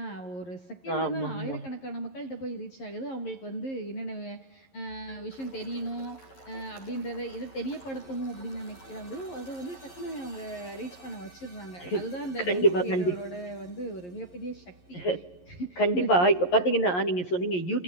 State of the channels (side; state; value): right; late; 11 ms